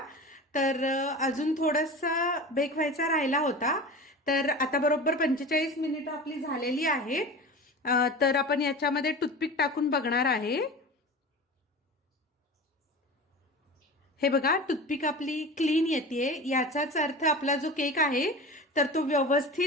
तर अजून थोडासा बेक व्हायचा राहिला होता. तर आता बरोबर 45 मिनिटं आपली झालेली आहेत. तर आपण याच्यामध्ये टूथपिक टाकून बघणार आहे. हे बघा टूथपिक आपली क्लीन येते, याचाच अर्थ आपला जो केक आहे तर तो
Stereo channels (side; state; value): both; normal; correlation 0.33